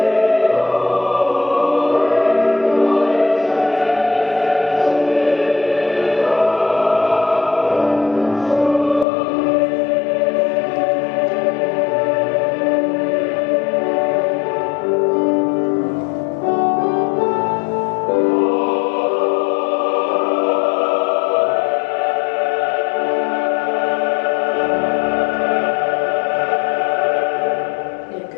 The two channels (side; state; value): right; drops out; at 9.1 s